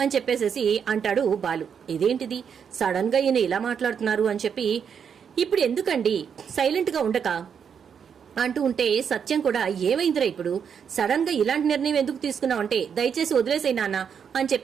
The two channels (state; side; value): quieter; left; 7.3 dB